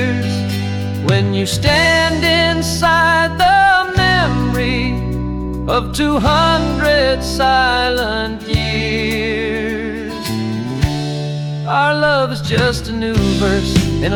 When you stand inside the memory of 200 silent years, our love is just a new verse in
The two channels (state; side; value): identical; both; correlation 1.00